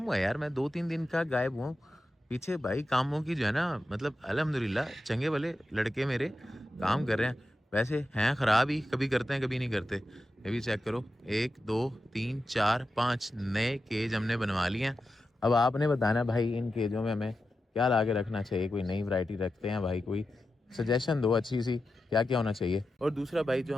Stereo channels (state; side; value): normal; both; correlation 0.90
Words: हुआ है यार, मैं 2, 3 दिन का गायब हुआ हूँ। पीछे भाई कामों की जो है ना मतलब अल्हम्दुलिल्लाह चंगे वाले लड़के मेरे काम कर रहे हैं। वैसे हैं ख़राब ही, कभी करते हैं कभी नहीं करते। ये भी चेक करो, 1, 2, 3, 4, 5 नए केज हमने बनवा लिए हैं। अब आपने बताना भाई इन केजों में हमें क्या ला के रखना चाहिए। कोई नई वैरायटी रखते हैं भाई, कोई सजेशन दो अच्छी सी, क्या क्या होना चाहिए। और दूसरा भाई जो